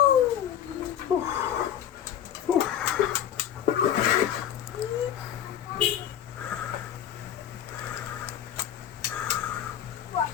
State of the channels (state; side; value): quieter; right; 10.1 dB